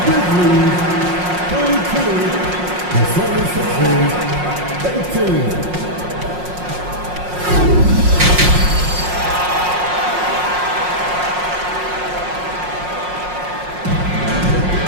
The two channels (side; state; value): left; late; 5.5 ms